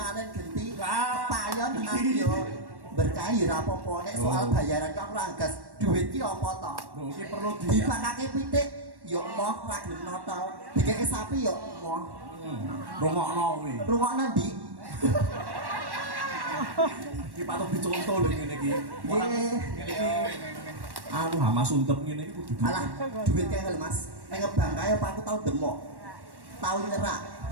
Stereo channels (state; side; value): late; left; 1.1 ms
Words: genti payon nang yo berkah yo ora apa-apa nek soal bayaran kok ora gas duit ki apa to? Lho iki perlu dipakake pitik yo moh ra gelem notol. Dikeke sapi yo moh. Rungokno kuwi. Rungokno ndi? Iki patut dicontoh lho ngene iki. Ora ngene iki anu hama suntep ngene iki kudu. Alah, duit kae lho Mas. Nek ngebang kae apa aku tau demok. Tau nyerak,